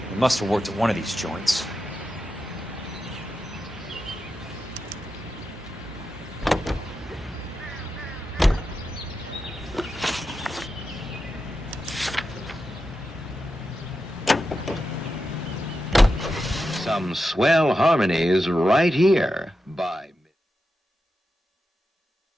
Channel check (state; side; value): normal; both; correlation 0.89